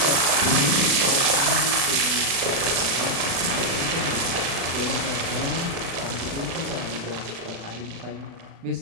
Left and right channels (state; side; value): late; left; 36 ms